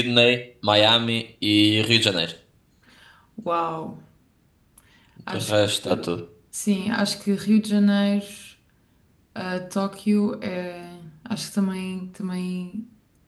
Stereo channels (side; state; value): both; identical; correlation 1.00